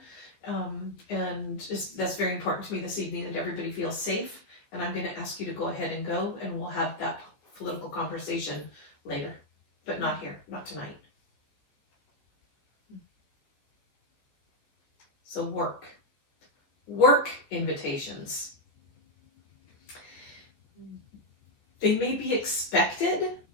And that's very important to me this evening, that everybody feels safe. And I'm going to ask you to go ahead and go, and we'll have that political conversation later, but not here, not tonight. So work invitations. They may be expected,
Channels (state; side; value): late; right; 15 ms